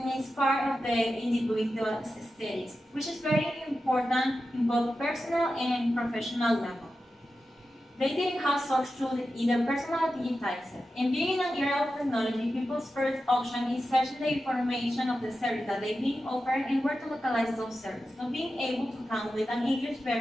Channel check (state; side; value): normal; both; correlation 0.91